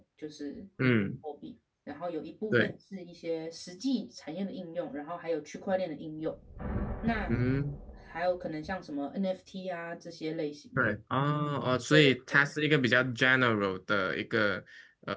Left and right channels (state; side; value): identical; both; correlation 1.00